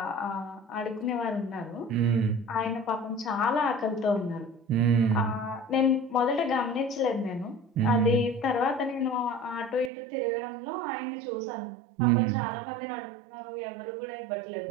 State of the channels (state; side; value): drops out; left; at 9.9 s